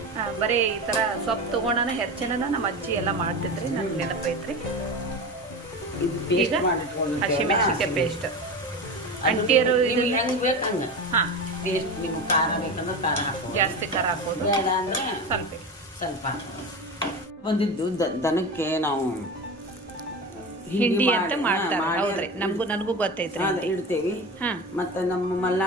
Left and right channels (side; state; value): both; normal; correlation 0.26